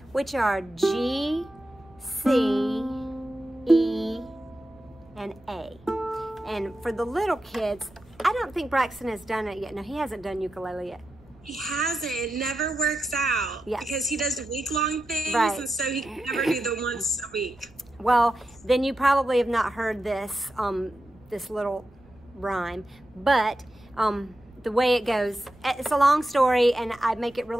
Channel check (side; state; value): right; noise; rumble, 26 dB below the sound